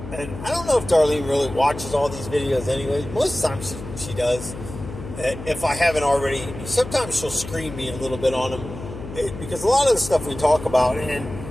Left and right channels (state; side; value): noise; left; hum, 11 dB below the sound